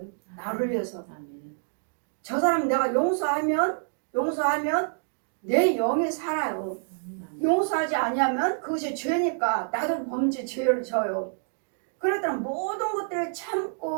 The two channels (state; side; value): silent; left; digital silence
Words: 나를 위해서. 저 사람 내가 용서하면 내 영이 살아요. 용서하지 아니하면 그것이 죄니까 나도 범죄 죄를 져요. 그러니까 모든 것들을